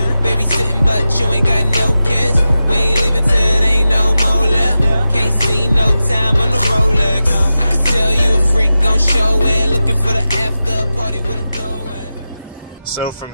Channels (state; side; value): inverted; both; correlation -0.93